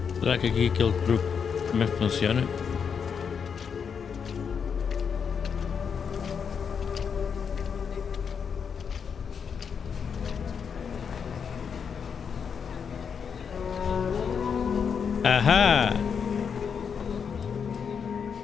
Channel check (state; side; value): quieter; right; 6.7 dB